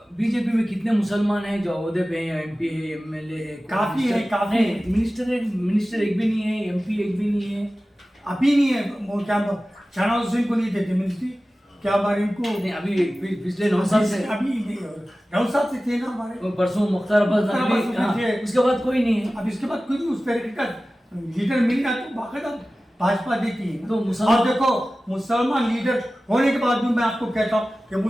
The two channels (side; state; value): both; normal; correlation 0.96